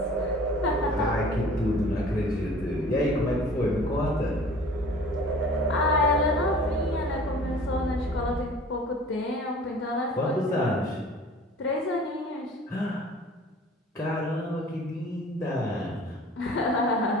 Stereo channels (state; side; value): normal; both; correlation 0.46